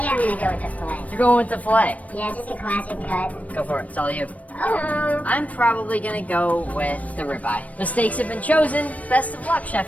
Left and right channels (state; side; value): late; right; 0.069 ms